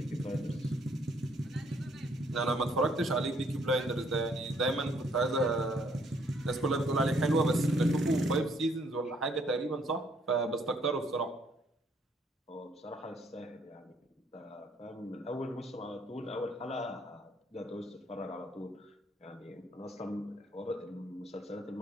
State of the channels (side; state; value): both; normal; correlation 0.67